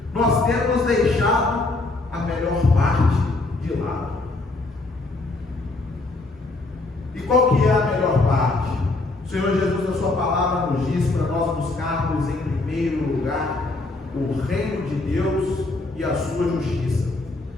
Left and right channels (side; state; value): right; quieter; 3.1 dB